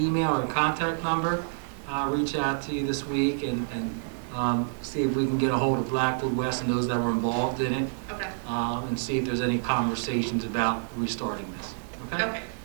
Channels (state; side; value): silent; left; digital silence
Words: and contact number, I'll reach out to you this week and see if we can get a hold of Blackwood West and those that were involved in it, Okay, and see if there's any conversations about restarting this. Okay? okay,